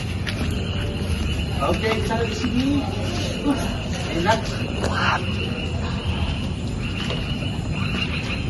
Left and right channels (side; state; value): both; identical; correlation 1.00